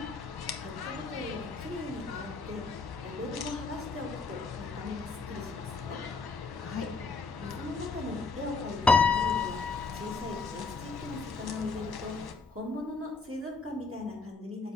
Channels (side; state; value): right; quieter; 4.3 dB